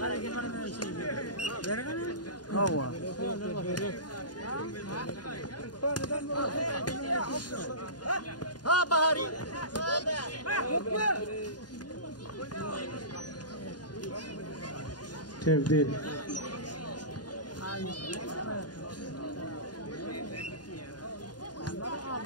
ها بهاري تبديل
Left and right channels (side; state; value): right; late; 0.70 ms